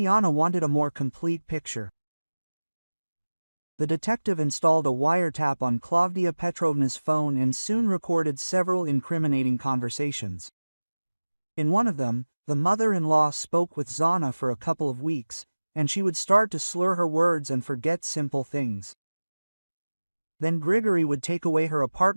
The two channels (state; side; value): inverted; both; correlation -1.00